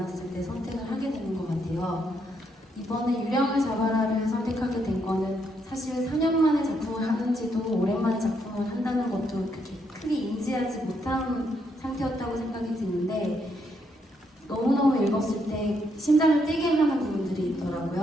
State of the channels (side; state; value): both; normal; correlation 0.76